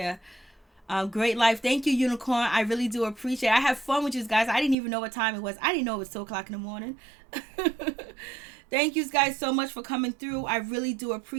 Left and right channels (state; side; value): drops out; left; at 4.8 s